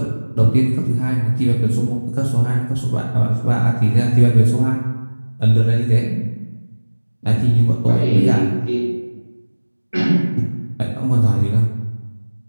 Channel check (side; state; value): both; inverted; correlation -1.00